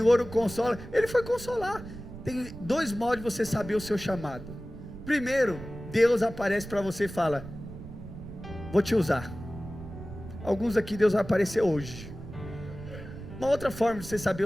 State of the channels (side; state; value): right; noise; rumble, 12 dB below the sound